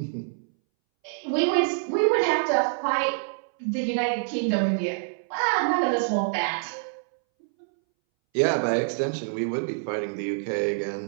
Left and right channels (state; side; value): silent; left; 61 dB below the other